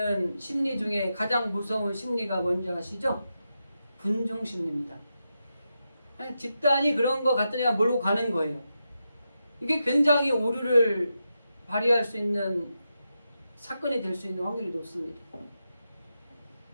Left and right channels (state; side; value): inverted; both; correlation -0.87